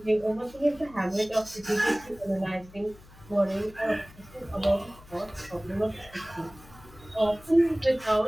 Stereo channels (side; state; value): left; noise; hum, 22 dB below the sound